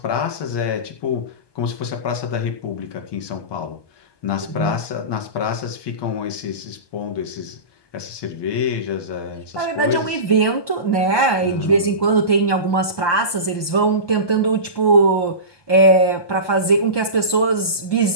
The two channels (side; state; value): right; late; 1.2 ms